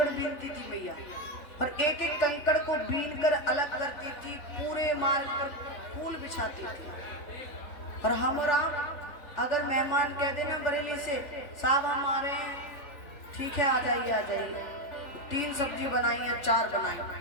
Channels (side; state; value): right; late; 3.4 ms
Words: बीनती थी मैया। और एक एक कंकड़ को बीन कर अलग करती थी। पूरे मार्ग पर फूल बिछाती थी। और हम राम अगर मेहमान कह देना बरेली से, साहब हम आ रहे हैं, ठीक है आ जाइए आ जाइए। 3 सब्जी बनाई या 4 बनाई,